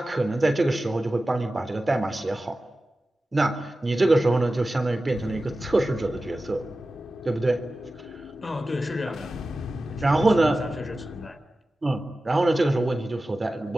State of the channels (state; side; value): normal; both; correlation 0.95